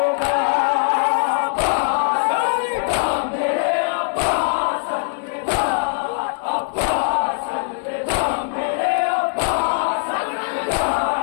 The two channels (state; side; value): silent; right; 65 dB below the other